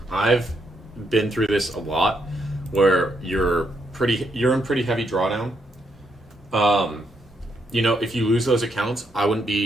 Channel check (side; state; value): both; normal; correlation 0.77